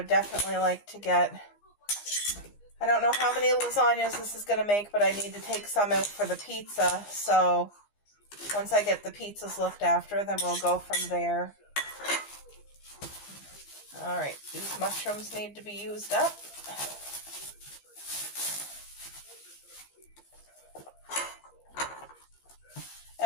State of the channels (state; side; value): late; right; 15 ms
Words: definitely like to get, I don't know how many lasagnas this is going to make, but I need to take some out for the pizza. So once I get the pizzas looked after, then we'll go from there. All right, these mushrooms need to be used up.